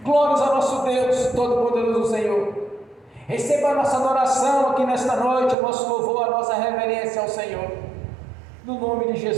Glórias ao nosso Deus Todo-Poderoso, Senhor. Receba a nossa adoração aqui nesta noite, o nosso louvor, a nossa reverência ao Senhor, no nome de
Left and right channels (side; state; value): left; drops out; at 5.6 s